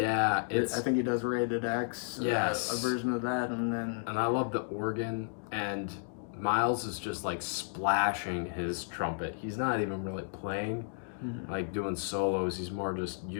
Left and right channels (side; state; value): right; silent; digital silence